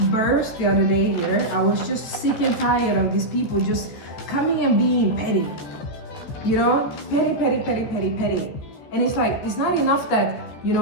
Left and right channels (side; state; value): right; late; 14 ms